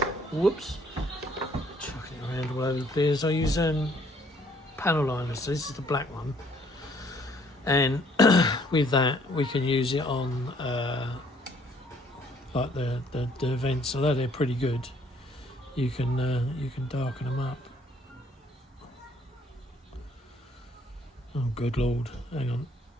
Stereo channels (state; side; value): normal; both; correlation 0.63